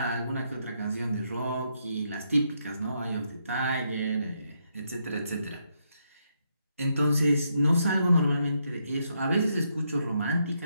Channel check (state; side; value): inverted; both; correlation -0.78